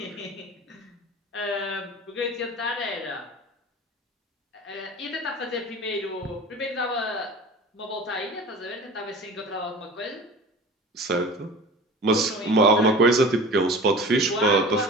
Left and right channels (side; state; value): both; normal; correlation 0.38